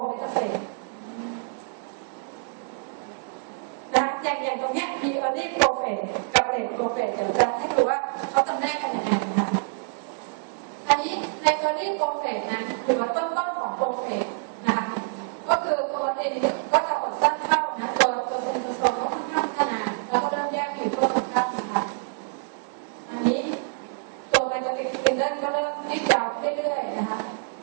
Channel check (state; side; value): silent; left; digital silence